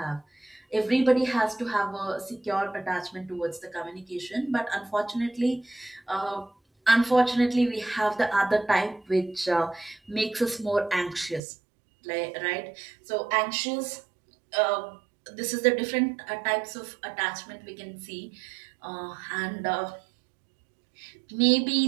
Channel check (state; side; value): drops out; left; at 11.4 s